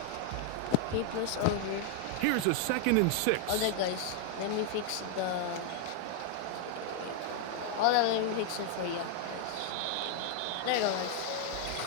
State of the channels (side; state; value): both; different; correlation 0.00